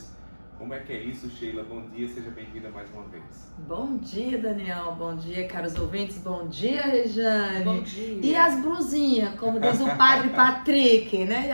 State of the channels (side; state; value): both; inverted; correlation -1.00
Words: Como é que é isso, Sheila? Bom dia, seja bem-vinda mais uma vez. Bom dia, Daniel. Bom dia, caros ouvintes. Bom dia, Rejane. Bom dia. E as blusinhas, como diz o padre Patrick, né? E